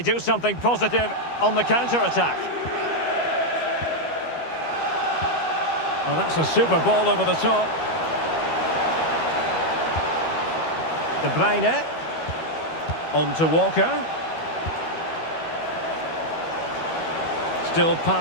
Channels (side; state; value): right; late; 12 ms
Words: something positive on the counter-attack? Well, that's a super ball over the top. De Bruyne. On to Walker. Still